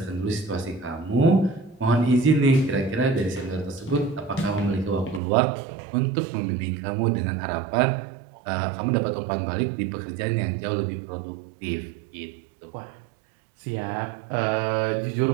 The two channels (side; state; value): left; drops out; at 5.2 s